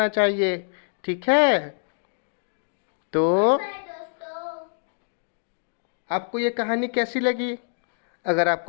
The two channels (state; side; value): silent; right; digital silence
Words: चाहिए। ठीक है? तो आपको ये कहानी कैसी लगी? अगर